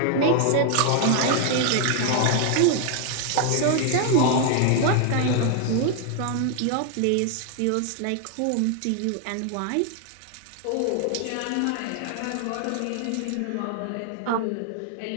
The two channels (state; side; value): different; both; correlation 0.00